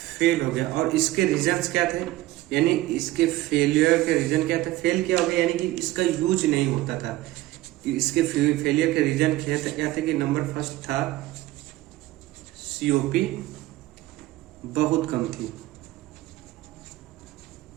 गया। और इसके रीजंस क्या थे, यानी इसके फेलियर के रीजन क्या थे, फेल क्या हो गया, यानी कि इसका यूज नहीं होता था। इसके फेलियर के रीजन क्या थे कि नंबर फर्स्ट था सीओपी बहुत कम थी।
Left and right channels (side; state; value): left; quieter; 16.8 dB